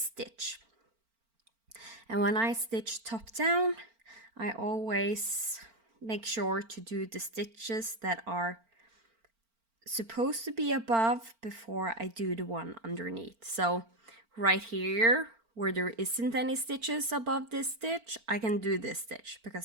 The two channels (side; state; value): left; late; 4.4 ms